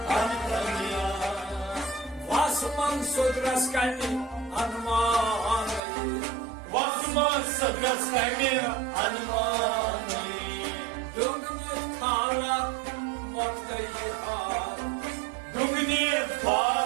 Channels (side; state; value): left; drops out; at 5.8 s